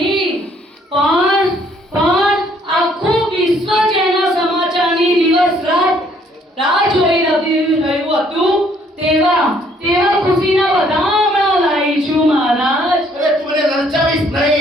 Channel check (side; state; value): both; normal; correlation 0.64